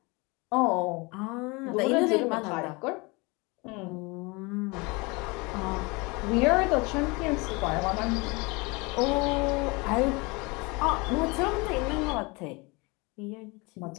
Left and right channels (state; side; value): quieter; right; 26.8 dB